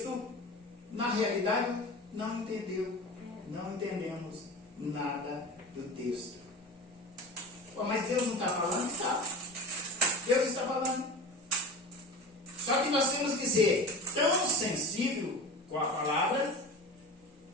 na realidade não entendeu. Não entendemos nada do texto. Pô, mas Deus não está falando? Está. Deus está falando. Só que nós temos que ser tão sensível com a palavra,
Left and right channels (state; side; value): normal; both; correlation 0.32